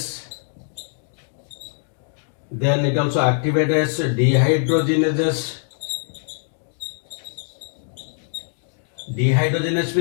Then it also activates dehydrogenases. Dehydrogenase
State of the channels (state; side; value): silent; right; digital silence